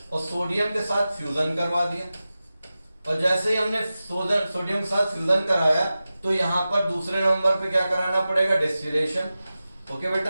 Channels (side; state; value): both; inverted; correlation -0.94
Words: और सोडियम के साथ फ्यूजन करवा दिया। और जैसे ही हमने सोडियम के साथ फ्यूजन कराया तो यहां पर दूसरे नंबर पे क्या कराना पड़ेगा, डिस्टिलेशन। ओके